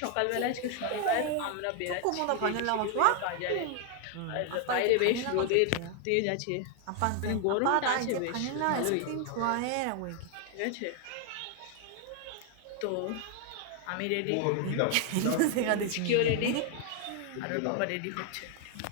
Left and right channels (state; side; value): different; both; correlation 0.00